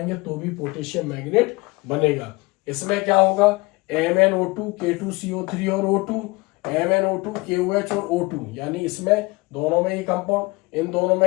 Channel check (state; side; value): quieter; right; 24.5 dB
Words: तो भी पोटेशियम मैग्नेट बनेगा। इसमें क्या होगा, MnO2 K2CO3 और O2, MnO2 KOH और O2, यानी इसमें दोनों में ये कंपाउंड, इन दोनों